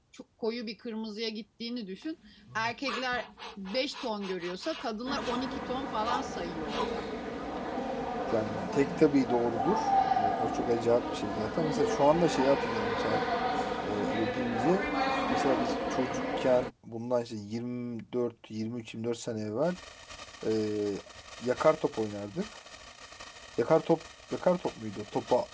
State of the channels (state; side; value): identical; both; correlation 1.00